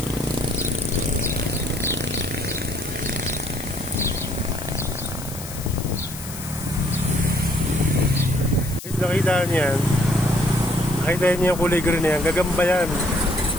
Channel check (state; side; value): noise; left; hiss, 12 dB below the sound